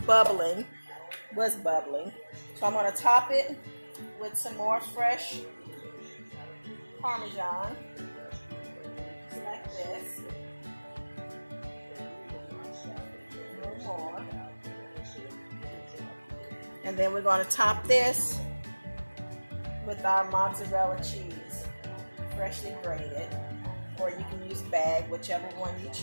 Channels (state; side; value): inverted; both; correlation -1.00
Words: bubbling, was bubbling. So I'm going to top it with some more fresh Parmesan, just like this. A little more. And then we're going to top this with our mozzarella cheese, freshly grated, or you can use bag, whichever one you